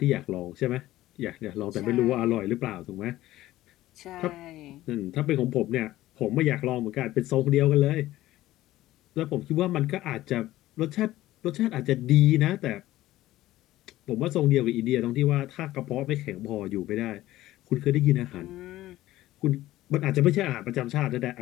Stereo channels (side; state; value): right; quieter; 15.6 dB